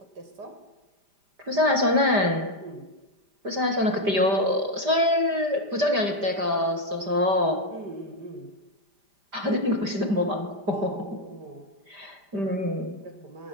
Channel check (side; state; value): left; late; 5.0 ms